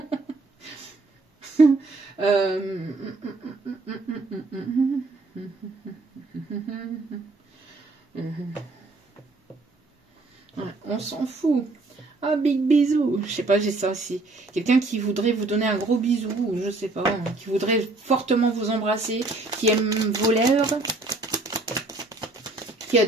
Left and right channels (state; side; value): quieter; left; 3.2 dB